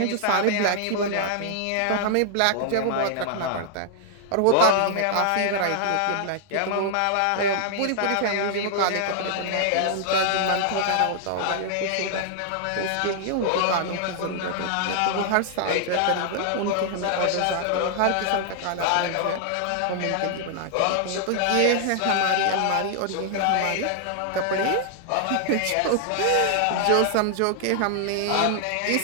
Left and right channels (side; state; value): both; different; correlation -0.01